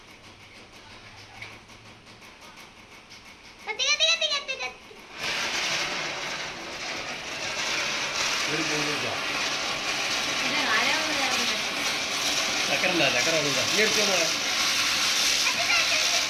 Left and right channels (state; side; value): identical; both; correlation 1.00